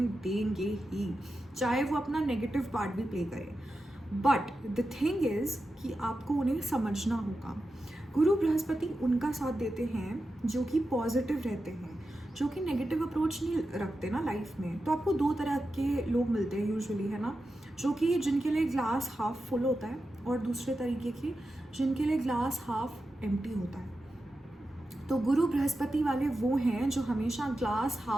देंगे ही, चाहे वो अपना नेगेटिव पार्ट भी प्ले करे। बट द थिंग इज़ कि आपको उन्हें समझना होगा। गुरु बृहस्पति उनका साथ देते हैं जो कि पॉजिटिव रहते हैं, जो कि नेगेटिव अप्रोच नहीं रखते ना लाइफ में। तो आपको दो तरह के लोग मिलते हैं यूजुअली, है ना, जो कि जिनके लिए ग्लास हाफ फुल होता है और दूसरे तरीके के जिनके लिए ग्लास हाफ एम्प्टी होता है। तो गुरु बृहस्पति वाले वो हैं जो हमेशा ग्लास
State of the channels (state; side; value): normal; both; correlation 0.90